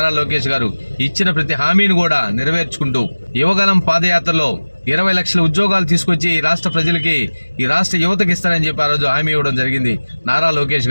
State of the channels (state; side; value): inverted; both; correlation -1.00